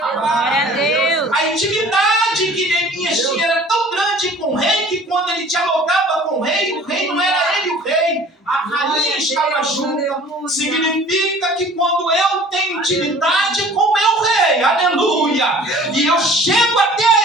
Glória a Deus. A intimidade que Neemias tinha era tão grande com o rei que quando ele dialogava com o rei não era ele o rei, a rainha estava junto. Significa que quando eu tenho intimidade com o meu rei, aleluia, e eu chego até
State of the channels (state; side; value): normal; both; correlation 0.48